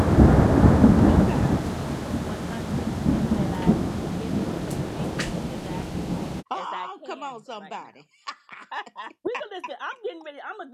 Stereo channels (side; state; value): both; identical; correlation 1.00